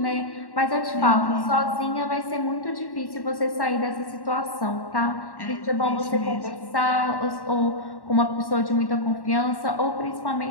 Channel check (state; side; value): late; right; 1.1 ms